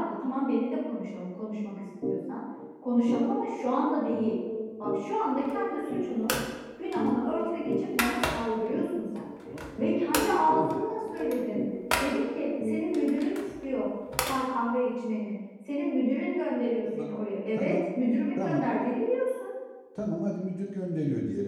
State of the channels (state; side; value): identical; both; correlation 1.00